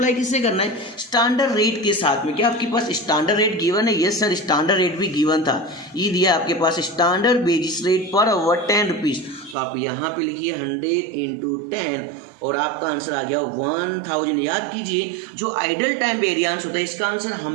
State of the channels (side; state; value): left; drops out; at 9.6 s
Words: किससे करना है, स्टैंडर्ड रेट के साथ में। क्या आपके पास स्टैंडर्ड रेट गिवन है? यस सर, स्टैंडर्ड रेट भी गिवन था। ये दिया आपके पास standard wages rate per hour 10 rupees. तो आप यहाँ पे लिखिए 100 इंटू 10 और आपका आंसर आ गया 1000। याद कीजिए, जो आइडियल टाइम वेरिएंस होता है इसका आंसर